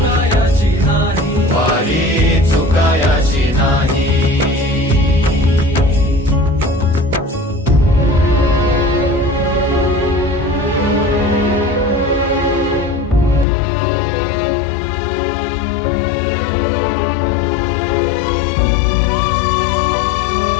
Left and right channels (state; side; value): drops out; right; at 13.5 s